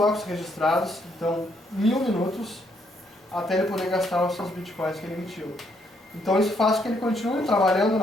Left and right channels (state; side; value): normal; both; correlation 0.72